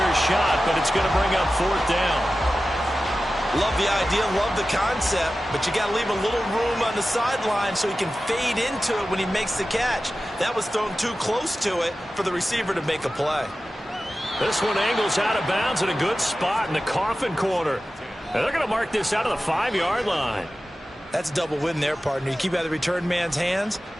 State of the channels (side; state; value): both; normal; correlation 0.94